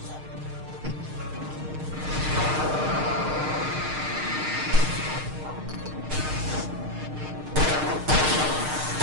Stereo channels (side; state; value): left; late; 6.5 ms